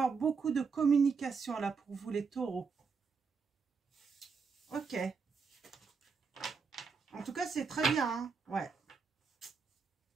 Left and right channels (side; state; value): left; quieter; 5.3 dB